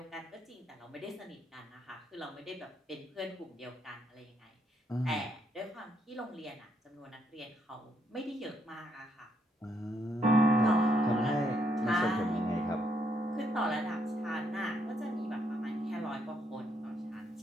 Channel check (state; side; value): normal; both; correlation 0.74